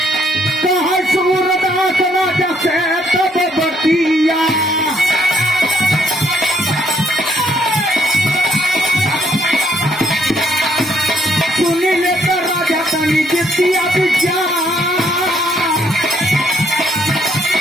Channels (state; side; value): normal; both; correlation 0.69